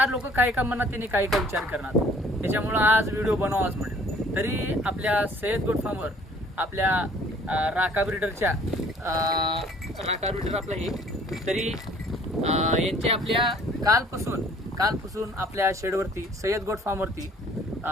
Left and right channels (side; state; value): both; normal; correlation 0.56